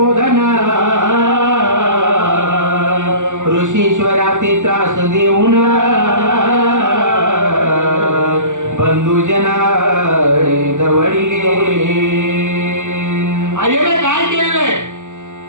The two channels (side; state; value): left; late; 0.86 ms